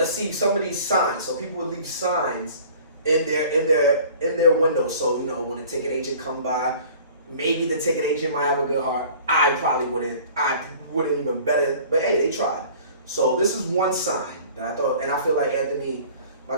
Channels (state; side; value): inverted; both; correlation -0.48